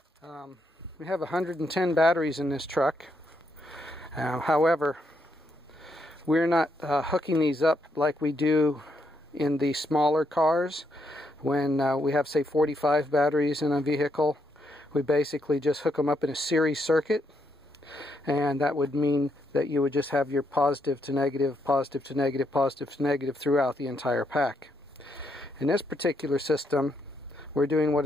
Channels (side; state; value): both; normal; correlation 0.78